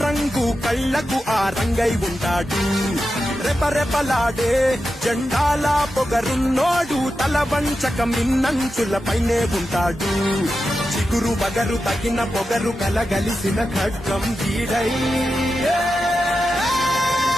కళ్ళకు ఆ రంగై ఉంటాడు రెపరెపలాడే జెండాల పొగరున్నోడు తల వంచక మిన్నంచులపైనే ఉంటాడు చిగురు బగరు తగిన పొగరు కలగలిసిన ఖడ్గం వీడై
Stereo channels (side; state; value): both; normal; correlation 0.90